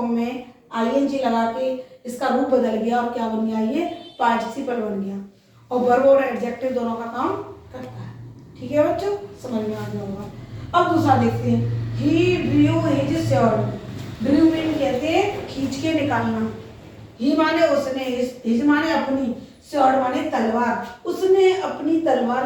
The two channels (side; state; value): both; identical; correlation 1.00